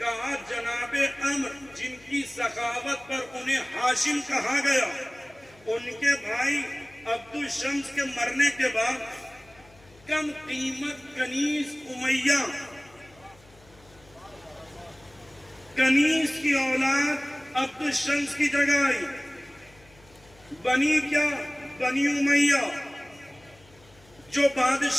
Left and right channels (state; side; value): noise; left; hum, 27 dB below the sound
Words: جناب عمر جن کی سخاوت پر انہیں ہاشم کہا گیا، ان کے بھائی عبد الشمس کے مرنے کے بعد کم قیمت کنیز امیہ، کنیز کی اولاد عبد الشمس کی جگہ آئی. بنی کیا؟ بنی امیہ. جو